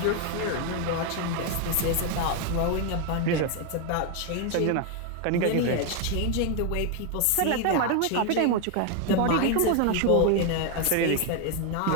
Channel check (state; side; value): different; both; correlation 0.01